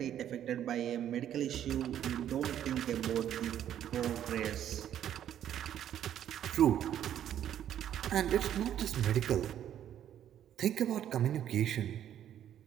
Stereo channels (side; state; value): left; quieter; 10.6 dB